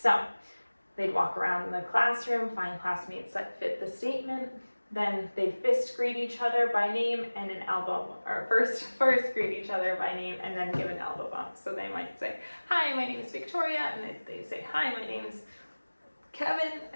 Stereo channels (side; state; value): both; inverted; correlation -1.00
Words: they'd walk around in the classroom, find classmates that fit the statement, then they'd fist greet each other by name and an elbow, or first greet each other by name and then give an elbow bump. So they might say, hi, my name is Victoria, and they say, hi, my name's Kevin,